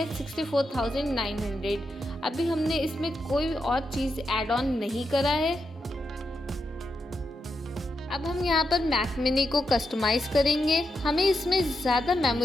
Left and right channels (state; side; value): normal; both; correlation 0.85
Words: 64,900। अभी हमने इसमें कोई और चीज़ ऐड ऑन नहीं करा है। अब हम यहाँ पर मैक मिनी को कस्टमाइज करेंगे। हमें इसमें ज़्यादा